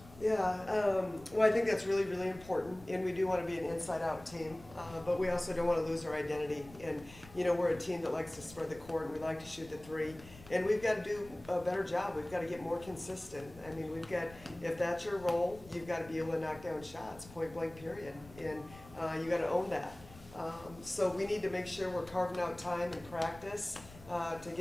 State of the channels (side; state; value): left; noise; rumble, 20 dB below the sound